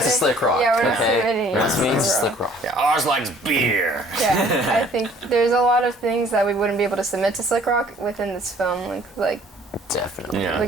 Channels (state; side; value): normal; both; correlation 0.56